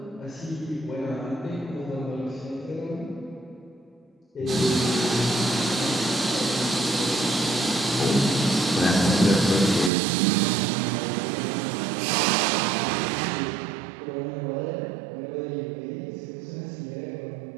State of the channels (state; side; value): drops out; left; at 9.9 s